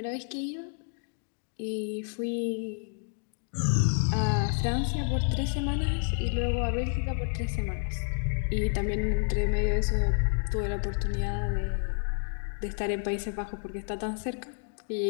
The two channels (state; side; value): silent; right; 58 dB below the other